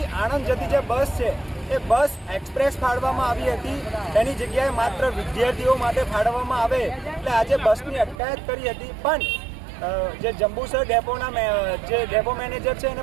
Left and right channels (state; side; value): drops out; left; at 8.2 s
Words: આણંદ જતી જે બસ છે એ બસ એક્સપ્રેસ ફાળવવામાં આવી હતી, એની જગ્યાએ માત્ર વિદ્યાર્થીઓ માટે ફાળવવામાં આવે એટલે આજે બસની અટકાયત કરી હતી। પણ જે જંબુસર ડેપોના જે ડેપો મેનેજર છે